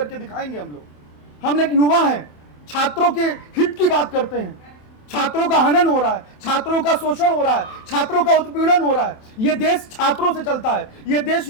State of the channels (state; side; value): late; right; 27 ms